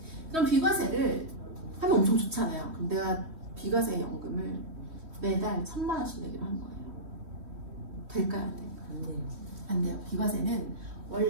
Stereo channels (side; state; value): left; late; 3.1 ms